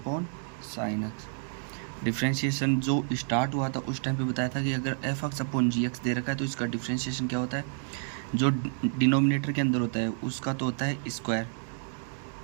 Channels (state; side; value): silent; left; 58 dB below the other